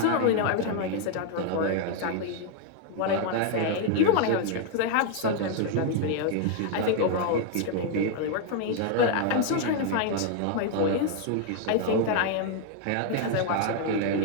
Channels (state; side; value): different; both; correlation 0.00